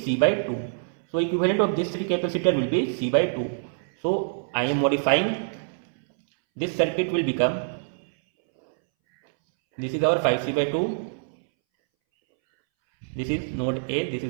C by 2. So equivalent of this 3 capacitor will be C by 2. So I am modifying, this circuit will become, this is our 5C by 2, this is node A, this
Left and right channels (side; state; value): left; silent; 62 dB below the other